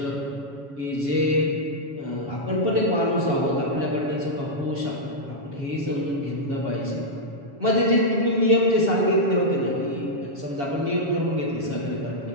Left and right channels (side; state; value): left; late; 7.1 ms